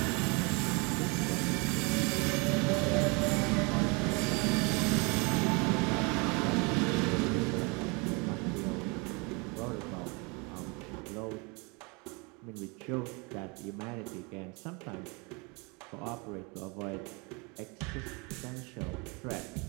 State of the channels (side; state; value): left; quieter; 29.8 dB